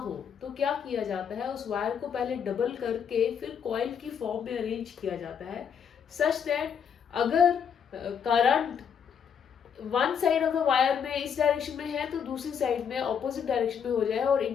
तो क्या किया जाता है, उस वायर को पहले डबल करके फिर कॉइल की फॉर्म में अरेंज किया जाता है, सच दैट अगर current one side of the wire में इस डायरेक्शन में है तो दूसरी साइड में ऑपोजिट डायरेक्शन में हो जाए और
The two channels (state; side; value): quieter; right; 7.4 dB